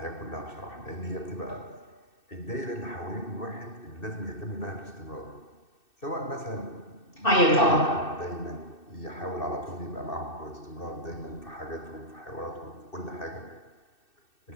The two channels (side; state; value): right; late; 2.6 ms